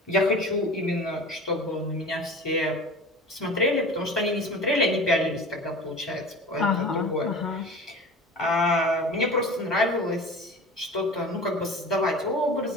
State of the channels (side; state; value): both; normal; correlation 0.37